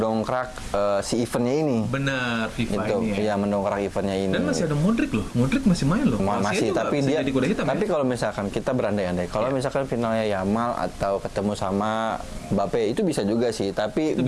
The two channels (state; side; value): identical; both; correlation 1.00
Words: si eventnya ini. Bener, FIFA Itu, ini ya. ya mendongkrak eventnya ini. Dan masih ada Modric loh, Modric masih main loh. Masih, juga tapi bisa dia. jadi kuda hitam, Tapi ya? kalau misalkan kita berandai-andai, kalau misalkan finalnya Yamal atau ketemu sama Mbappe, itu bisa juga sih. Tapi Itu